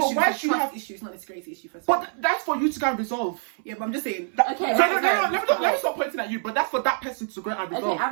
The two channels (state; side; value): silent; left; 59 dB below the other